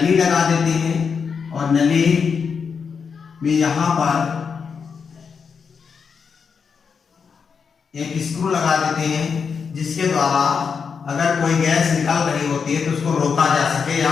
लगा देते हैं और नली में यहां पर एक स्क्रू लगा देते हैं, जिसके द्वारा अगर कोई गैस निकल रही होती है तो उसको रोका जा सके या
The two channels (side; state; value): right; quieter; 6.0 dB